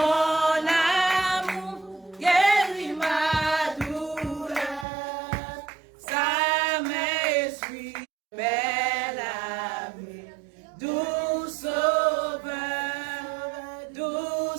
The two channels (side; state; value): left; drops out; at 4.9 s